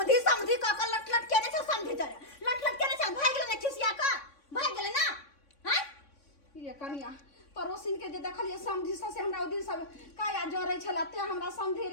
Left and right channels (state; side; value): late; right; 3.6 ms